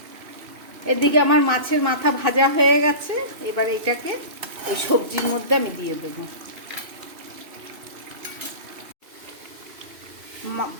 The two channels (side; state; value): left; late; 2.6 ms